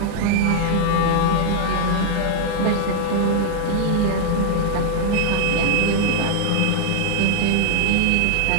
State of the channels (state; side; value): different; both; correlation 0.00